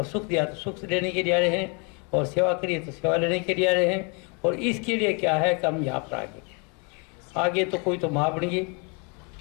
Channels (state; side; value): quieter; right; 34.5 dB